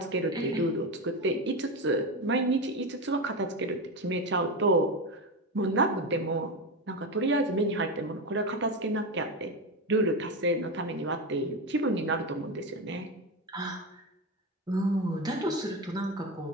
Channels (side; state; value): both; normal; correlation 0.16